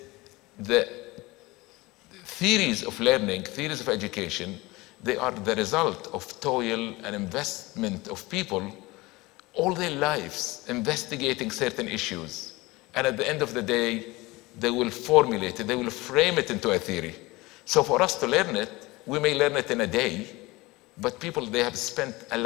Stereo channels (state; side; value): quieter; right; 21.7 dB